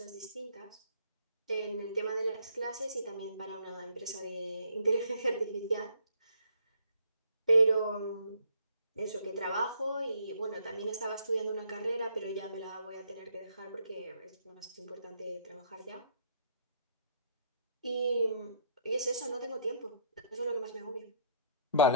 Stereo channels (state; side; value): inverted; both; correlation -0.63